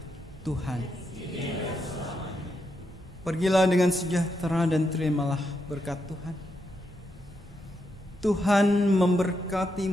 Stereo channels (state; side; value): normal; both; correlation 0.82